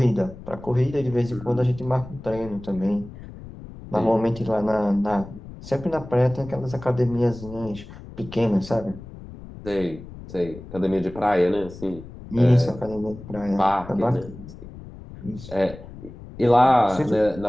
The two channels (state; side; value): noise; left; rumble, 15 dB below the sound